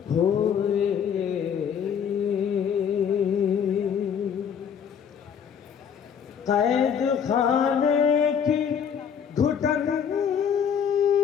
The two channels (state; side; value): quieter; right; 7.6 dB